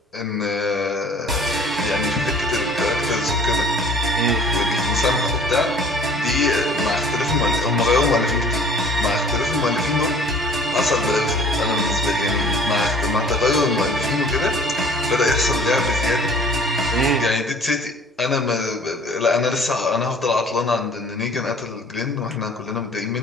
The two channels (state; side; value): normal; both; correlation 0.51